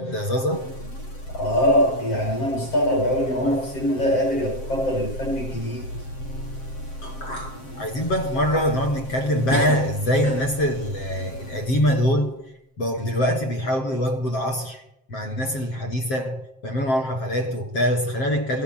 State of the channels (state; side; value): late; right; 7.6 ms